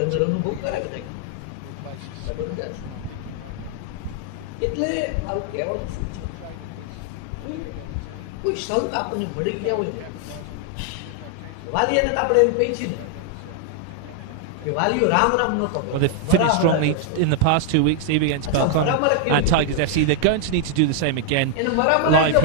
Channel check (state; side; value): different; both; correlation 0.00